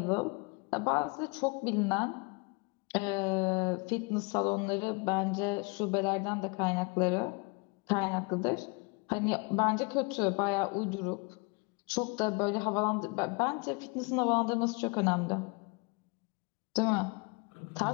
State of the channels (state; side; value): quieter; right; 30.5 dB